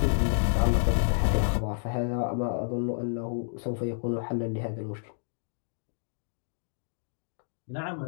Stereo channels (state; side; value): silent; right; digital silence